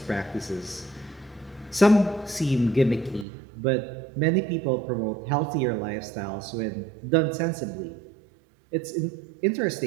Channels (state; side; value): drops out; left; at 3.2 s